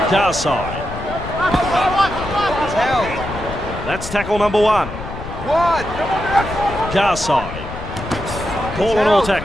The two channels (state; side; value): noise; left; rumble, 9 dB below the sound